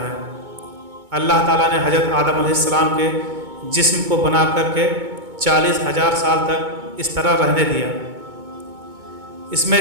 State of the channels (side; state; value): left; late; 2.2 ms